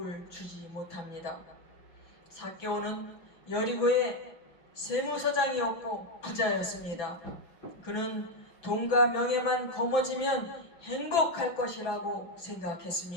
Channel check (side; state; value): right; late; 6.0 ms